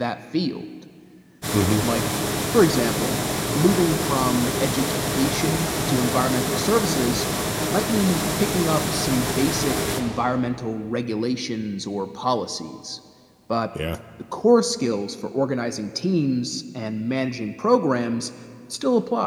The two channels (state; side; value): identical; both; correlation 1.00